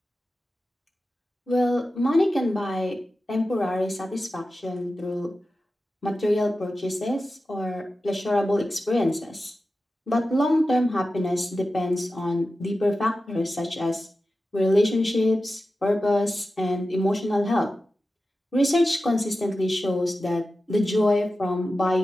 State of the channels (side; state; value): both; normal; correlation 0.93